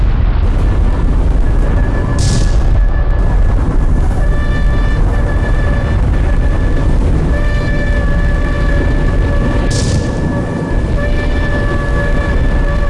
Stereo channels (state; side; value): identical; both; correlation 1.00